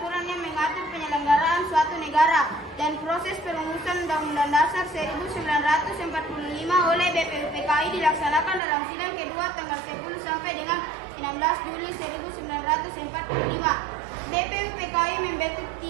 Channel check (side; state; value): left; drops out; at 8.6 s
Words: yang mengatur penyelenggaraan suatu negara dan proses perumusan Undang-Undang Dasar 1945 oleh BPUPKI dilaksanakan dalam sidang kedua tanggal 10 sampai dengan 16 Juli 1945. BPUPKI membentuk